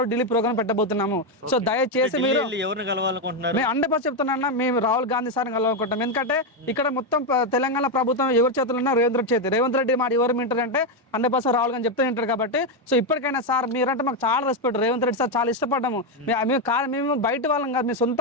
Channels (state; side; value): normal; both; correlation 0.06